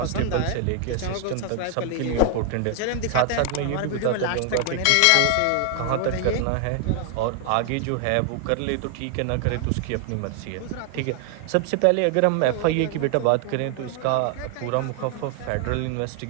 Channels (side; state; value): both; different; correlation 0.00